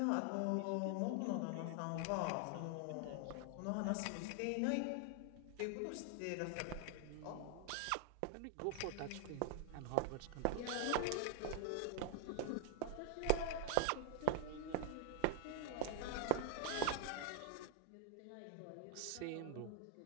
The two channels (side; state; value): both; different; correlation 0.00